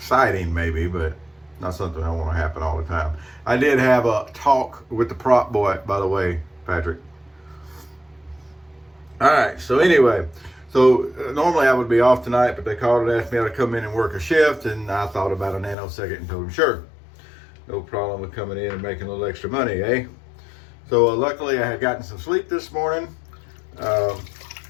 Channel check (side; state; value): right; drops out; at 15.8 s